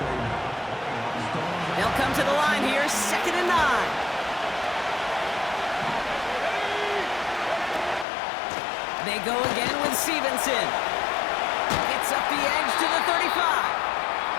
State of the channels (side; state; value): right; drops out; at 8.1 s